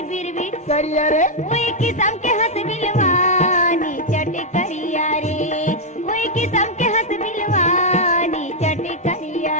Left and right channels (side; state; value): both; normal; correlation -0.03